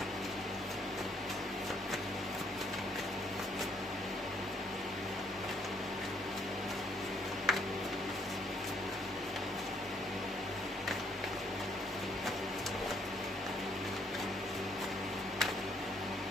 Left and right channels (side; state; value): both; normal; correlation 0.68